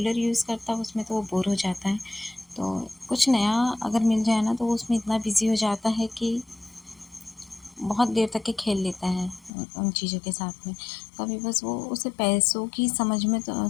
यूज़ करता है उसमें तो वो बोर हो जाता है, तो कुछ नया अगर मिल जाए ना तो वो उसमें इतना बिजी हो जाता है कि बहुत देर तक के खेल लेता है उन चीज़ों के साथ में। कभी बस वो उसे पैसों की समझ में तो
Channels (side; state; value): right; drops out; at 9.5 s